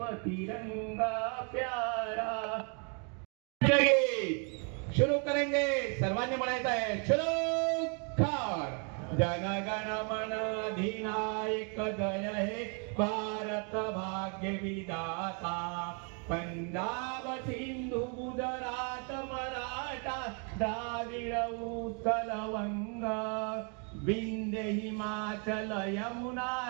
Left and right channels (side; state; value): left; quieter; 37.6 dB